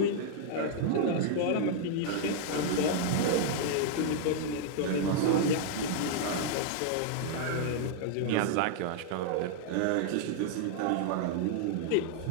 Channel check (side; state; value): both; different; correlation -0.01